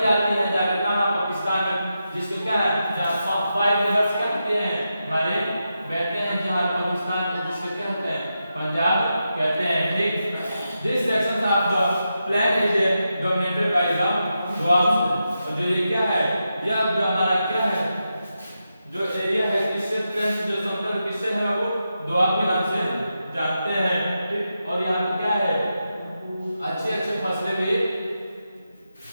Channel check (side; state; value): both; inverted; correlation -0.88